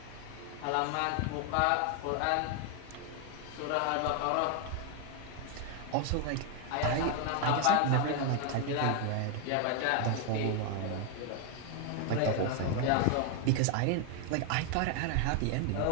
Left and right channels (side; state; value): both; different; correlation 0.01